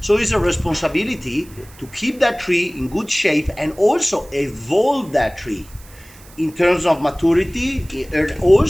So it's a responsibility to keep that tree in good shape and also evolve that tree in terms of maturity and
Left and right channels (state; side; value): noise; right; hiss, 23 dB below the sound